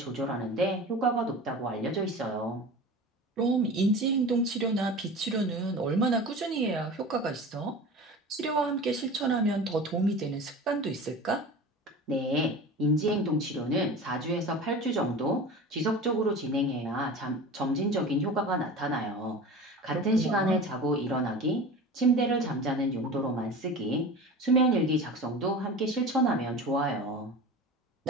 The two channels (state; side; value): normal; both; correlation 0.34